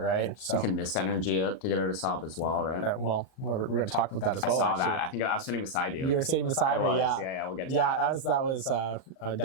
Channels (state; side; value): late; right; 38 ms